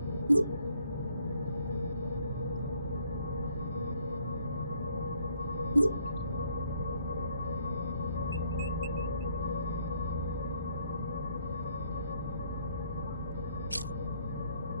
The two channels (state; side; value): inverted; both; correlation -0.68